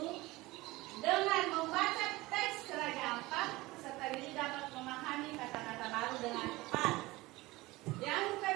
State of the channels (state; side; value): quieter; left; 20.3 dB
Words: dengan membaca teks Raja Ampat, serta diri dapat memahami kata-kata baru dengan tepat. Yang